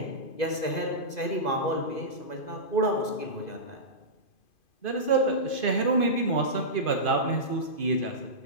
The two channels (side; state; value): right; late; 2.5 ms